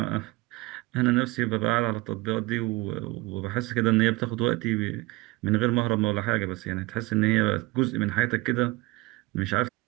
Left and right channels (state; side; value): quieter; left; 22.3 dB